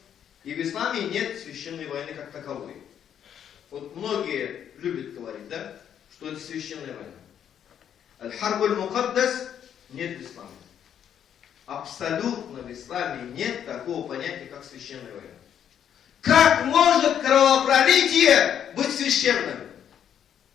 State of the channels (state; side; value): quieter; right; 9.2 dB